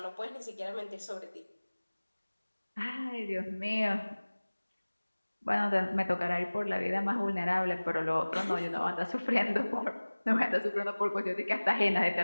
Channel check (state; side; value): inverted; both; correlation -1.00